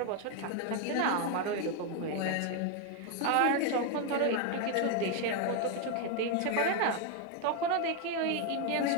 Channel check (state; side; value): different; both; correlation 0.01